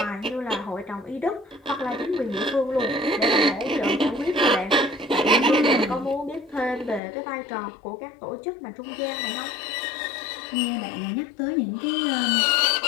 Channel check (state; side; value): drops out; right; at 7.0 s